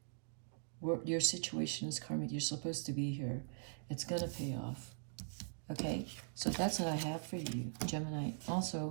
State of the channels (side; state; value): left; silent; digital silence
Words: Your situation is karmic. You're supposed to be here. It's going to pay off. Okay, so that's what I have for you, Gemini.